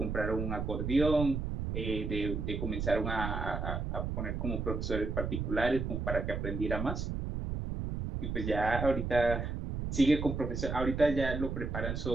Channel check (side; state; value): right; noise; rumble, 3 dB below the sound